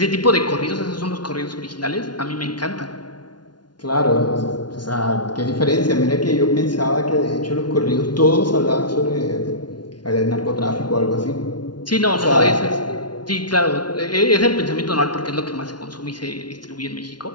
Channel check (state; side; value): late; right; 0.70 ms